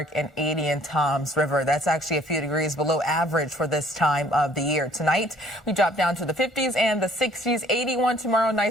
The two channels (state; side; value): normal; both; correlation 0.58